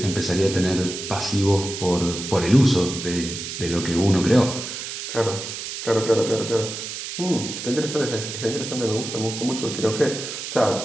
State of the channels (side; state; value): right; noise; hiss, 7 dB below the sound